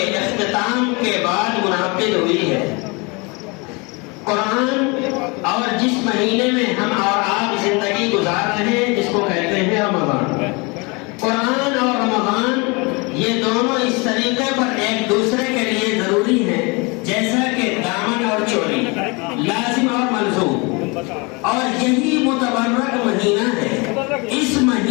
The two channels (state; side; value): quieter; right; 28.5 dB